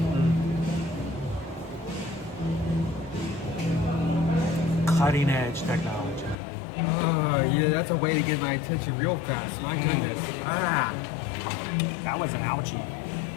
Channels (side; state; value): right; drops out; at 6.4 s